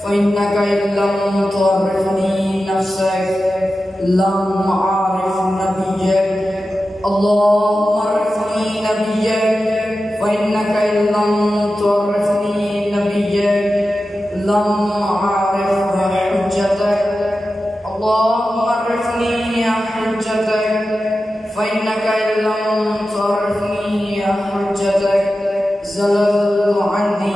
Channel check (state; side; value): normal; both; correlation 0.93